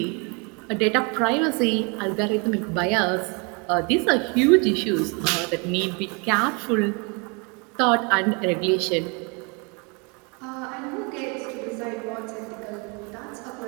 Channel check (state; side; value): quieter; left; 32.2 dB